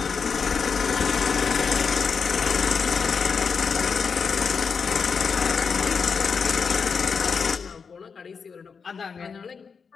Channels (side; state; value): right; quieter; 5.7 dB